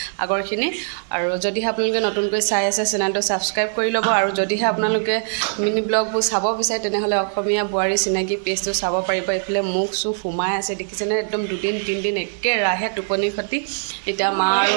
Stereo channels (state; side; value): silent; left; digital silence